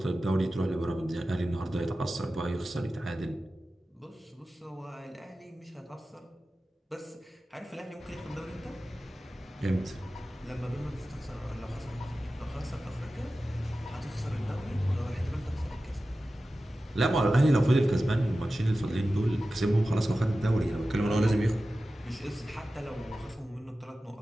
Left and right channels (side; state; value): both; normal; correlation 0.94